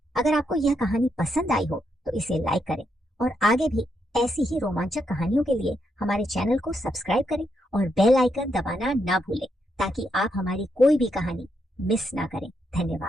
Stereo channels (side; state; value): both; normal; correlation 0.80